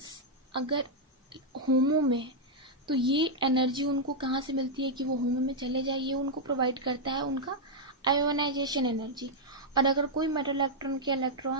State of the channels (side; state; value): both; normal; correlation -0.04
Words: अगर होमो में, तो ये एनर्जी उनको कहाँ से मिलती है कि वो होमो में चले जाए, ये उनको प्रोवाइड करता है उनका आयोनाइजेशन एनर्जी। और अगर कोई मेटल इलेक्ट्रॉन के